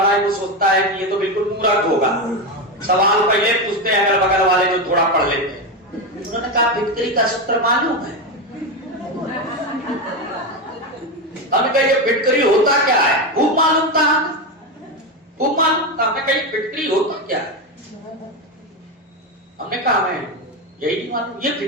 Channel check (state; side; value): normal; both; correlation 0.13